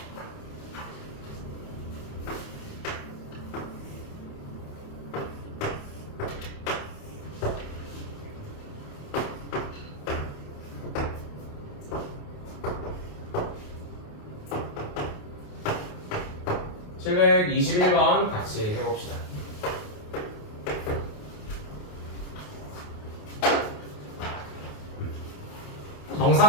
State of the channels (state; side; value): late; right; 28 ms